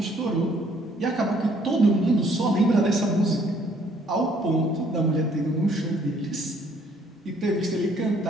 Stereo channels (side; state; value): both; normal; correlation 0.63